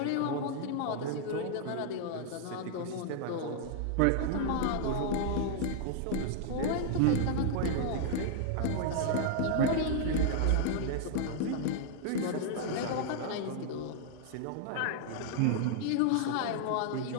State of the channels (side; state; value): both; different; correlation -0.01